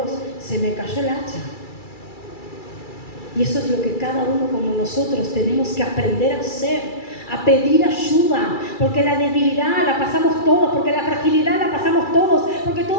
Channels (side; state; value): right; late; 2.3 ms